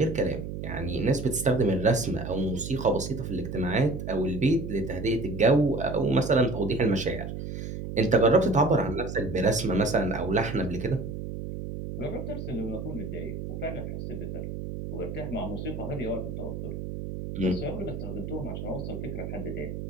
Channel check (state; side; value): noise; right; hum, 6 dB below the sound